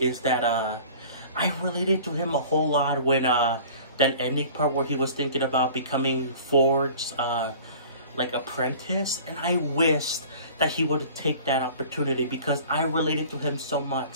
that I related to him a whole lot when that ending part where he was thinking about becoming Ford's like apprentice, and I wished that he would take that opportunity because I related to him so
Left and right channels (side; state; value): both; inverted; correlation -0.45